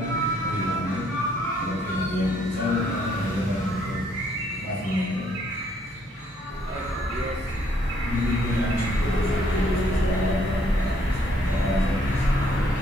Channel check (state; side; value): normal; both; correlation 0.67